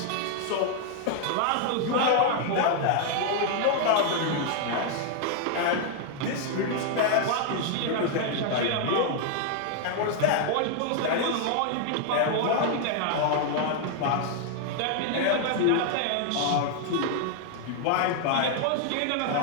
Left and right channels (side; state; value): both; different; correlation 0.00